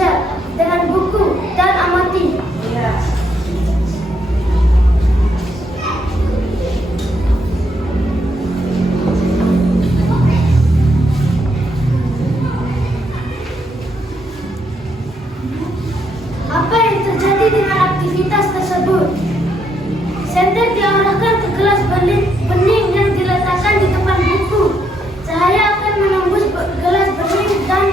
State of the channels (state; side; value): normal; both; correlation 0.75